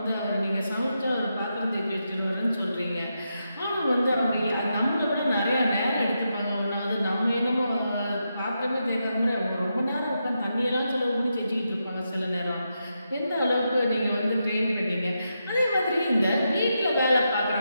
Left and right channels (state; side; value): inverted; both; correlation -0.85